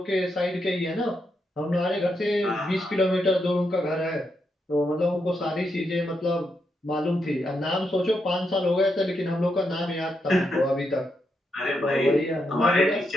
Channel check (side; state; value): both; normal; correlation 0.82